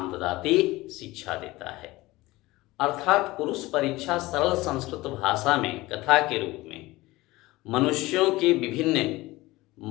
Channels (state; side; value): quieter; right; 19.5 dB